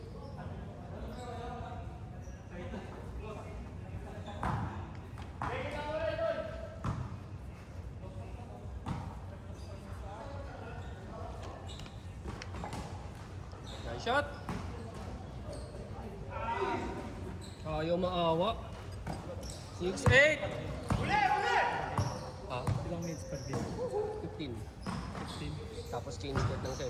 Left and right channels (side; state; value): both; identical; correlation 1.00